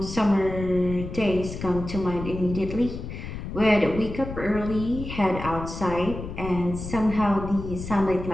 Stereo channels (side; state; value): left; noise; rumble, 8 dB below the sound